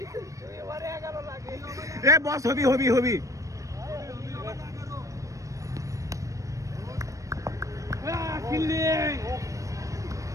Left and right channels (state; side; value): late; left; 0.16 ms